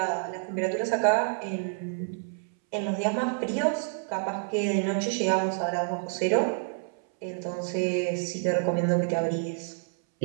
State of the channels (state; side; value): silent; left; 59 dB below the other